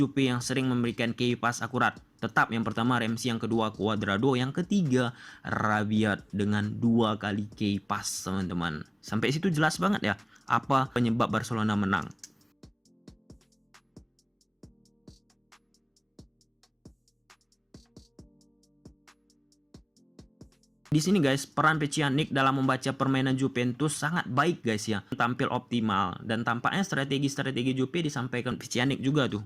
yang sering memberikan key pass akurat. Tetap yang pertama Ramsey, yang kedua Cuadrado, yang ketiga Rabiot dengan 2 kali key pass, teman-teman. Sampai situ jelas banget ya apa penyebab Barcelona menang. Di sini guys, peran Pjanic dalam membaca permainan Juventus sangat baik guys ya. Tampil optimal dan tampaknya strategi-strategi Juve disampaikan Pjanic juga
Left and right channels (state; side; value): identical; both; correlation 1.00